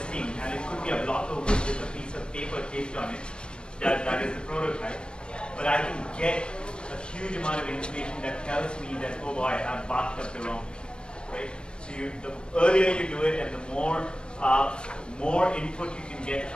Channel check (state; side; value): late; right; 0.052 ms